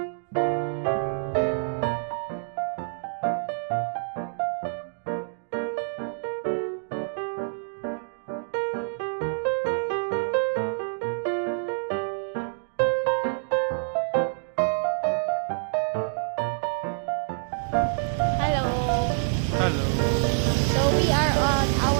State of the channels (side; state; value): left; silent; digital silence